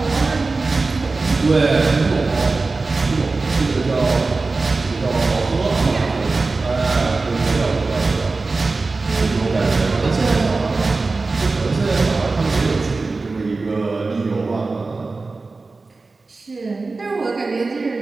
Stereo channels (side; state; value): left; quieter; 3.7 dB